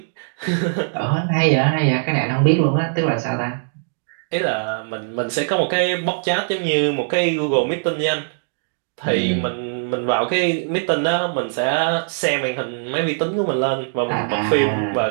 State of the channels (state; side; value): silent; left; digital silence